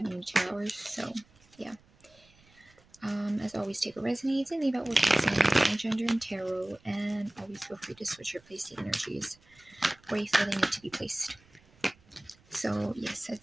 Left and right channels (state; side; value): noise; right; rumble, 29 dB below the sound